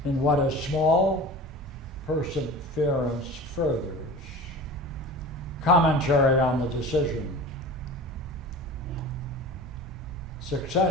in what is small, perseverance furthers. Commentary on the decision.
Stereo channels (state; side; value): normal; both; correlation 0.36